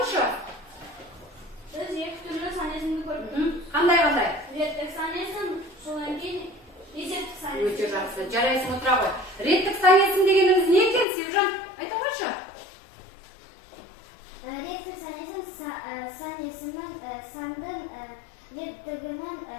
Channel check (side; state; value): right; drops out; at 11.1 s